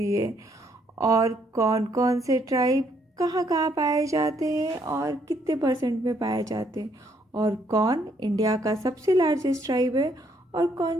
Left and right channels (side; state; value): both; normal; correlation 0.69